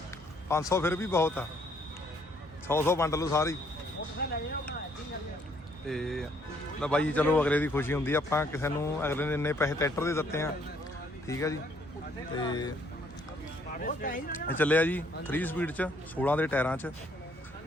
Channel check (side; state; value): both; normal; correlation 0.66